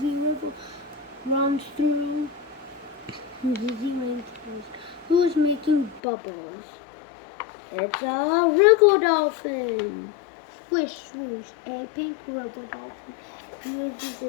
runs through the rainforest. Who is making bubbles? It's a river dolphin. Swish, swoosh. A pink river dolphin uses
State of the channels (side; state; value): right; drops out; at 6.0 s